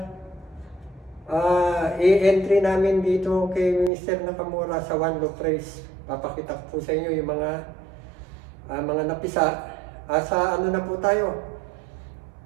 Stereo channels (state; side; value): drops out; left; at 3.9 s